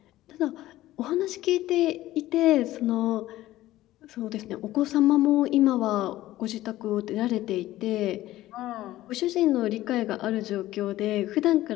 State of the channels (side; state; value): right; quieter; 15.5 dB